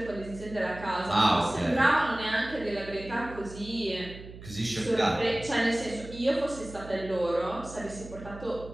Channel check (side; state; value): right; noise; hum, 15 dB below the sound